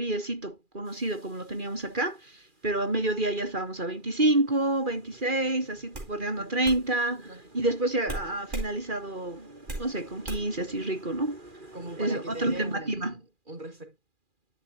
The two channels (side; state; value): left; late; 2.4 ms